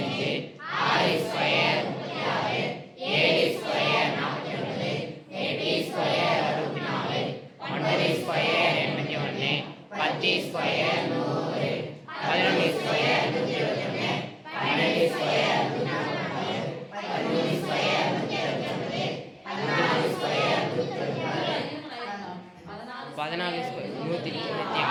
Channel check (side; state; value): both; identical; correlation 1.00